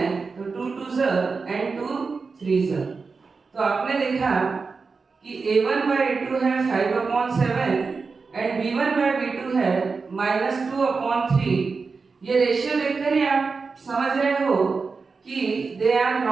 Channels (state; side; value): quieter; left; 4.6 dB